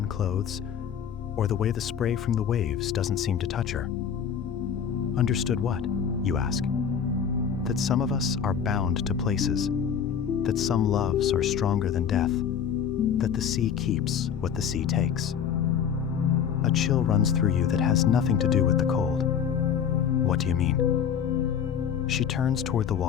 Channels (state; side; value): quieter; right; 7.8 dB